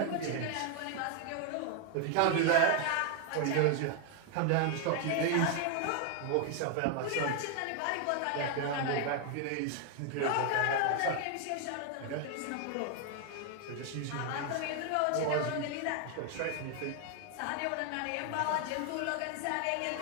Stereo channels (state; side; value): different; both; correlation 0.00